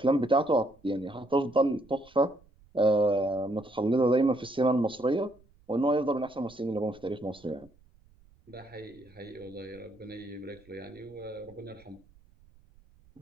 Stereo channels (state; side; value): noise; right; rumble, 29 dB below the sound